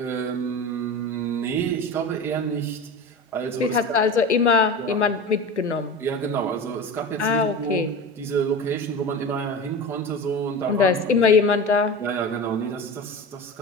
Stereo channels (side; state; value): both; normal; correlation 0.29